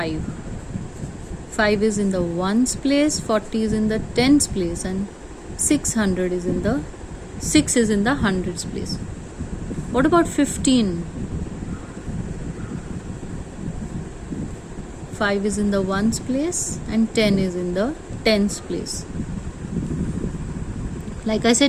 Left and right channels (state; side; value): identical; both; correlation 1.00